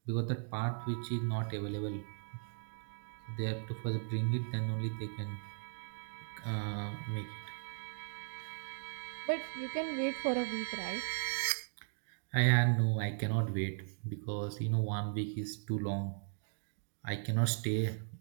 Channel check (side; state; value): left; silent; digital silence